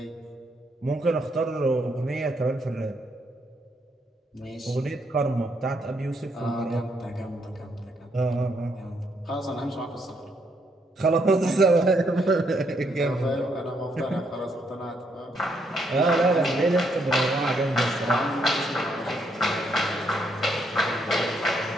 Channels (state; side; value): normal; both; correlation 0.74